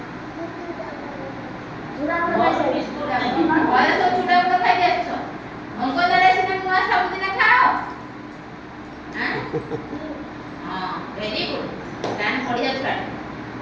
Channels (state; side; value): identical; both; correlation 1.00